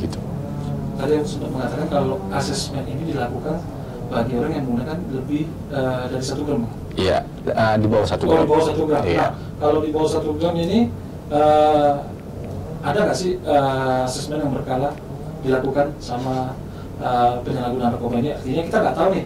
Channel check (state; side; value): identical; both; correlation 1.00